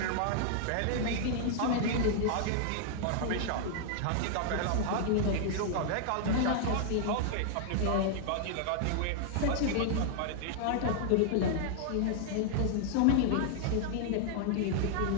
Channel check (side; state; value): both; different; correlation 0.00